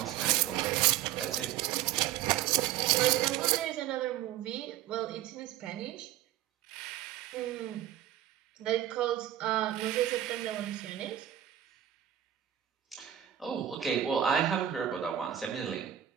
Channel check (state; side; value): quieter; left; 11.8 dB